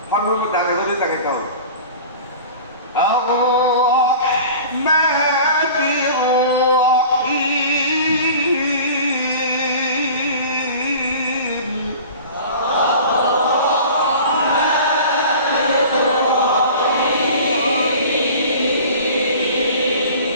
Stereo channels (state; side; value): inverted; both; correlation -0.41